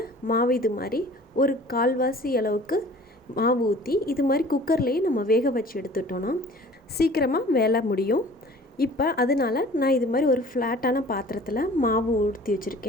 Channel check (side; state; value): both; normal; correlation 0.47